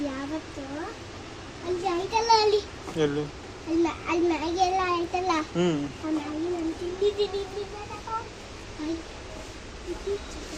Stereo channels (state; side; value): identical; both; correlation 1.00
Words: ಯಾವತ್ತು ಅಲ್ಲಿ ಆಯ್ತಲ್ಲ, ಅಲ್ಲಿ ಎಲ್ಲಿ ಅಲ್ಲ ಅಲ್ಲಿ ಮ್ಯಾಗಿ ಎಲ್ಲ ಆಯ್ತಲ್ಲ, ಆ ಮ್ಯಾಗಿ ನಾನು ತಿಂದಿದ್ದೀನಿ.